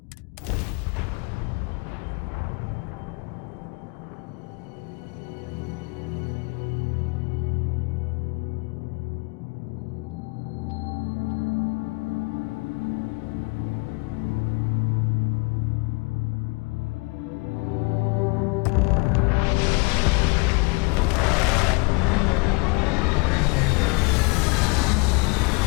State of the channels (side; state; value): right; quieter; 30.2 dB